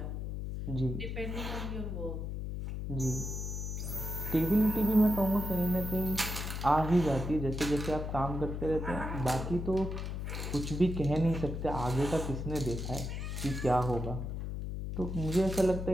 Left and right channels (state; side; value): noise; left; hum, 4 dB below the sound